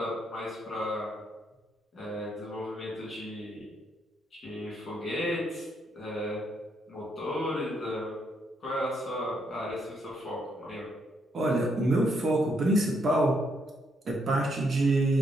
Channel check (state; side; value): normal; both; correlation 0.75